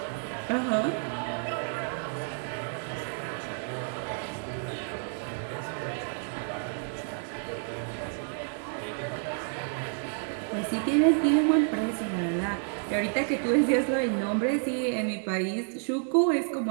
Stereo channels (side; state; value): left; silent; 57 dB below the other